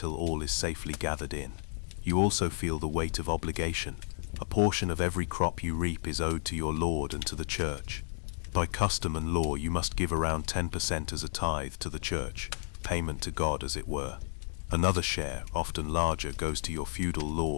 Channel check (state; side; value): silent; right; digital silence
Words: all is safely gathered in. You also feel the weight of obligation. A portion of every crop you reap is owed to your Lord and to the church. By custom and law, you must give around 10% as a tithe to the church, payment to God as it were. Another share, often larger, goes to your feudal